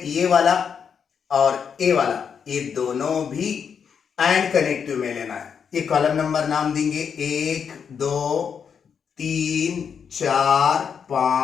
ये वाला और ए वाला, ये दोनों भी एंड कनेक्टिव में लेना है। ये कॉलम नंबर नाम देंगे 1 2 3 4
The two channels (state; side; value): quieter; right; 6.9 dB